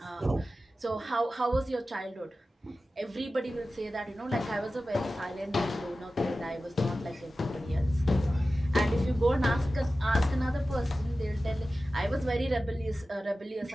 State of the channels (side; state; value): both; normal; correlation 0.95